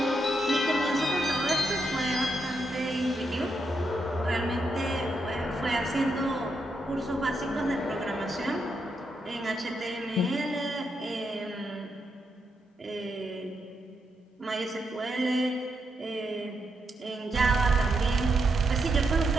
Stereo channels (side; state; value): both; normal; correlation 0.82